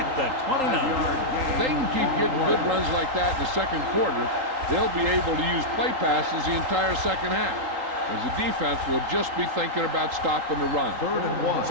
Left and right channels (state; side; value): late; left; 3.8 ms